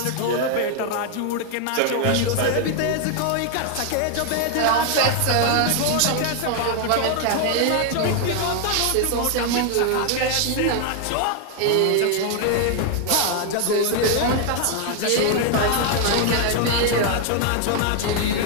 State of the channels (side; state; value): both; different; correlation 0.00